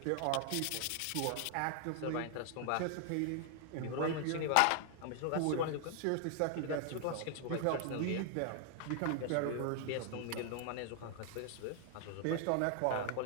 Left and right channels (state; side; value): different; both; correlation 0.00